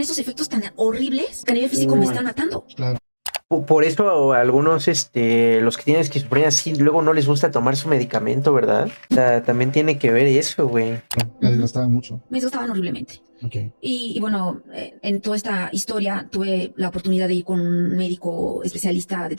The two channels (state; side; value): inverted; both; correlation -1.00